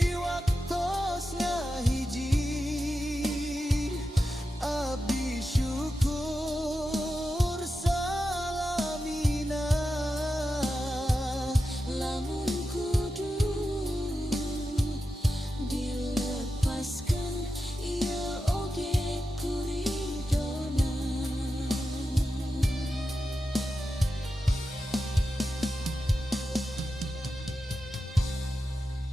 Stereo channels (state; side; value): normal; both; correlation 0.90